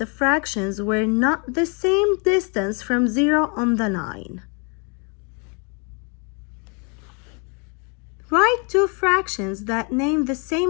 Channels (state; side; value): quieter; right; 35.6 dB